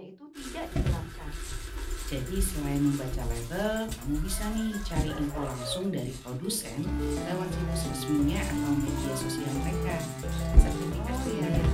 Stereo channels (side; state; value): both; identical; correlation 1.00